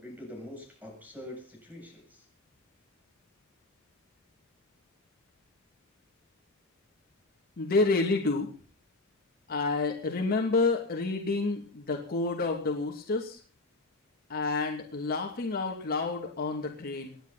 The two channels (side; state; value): right; quieter; 3.1 dB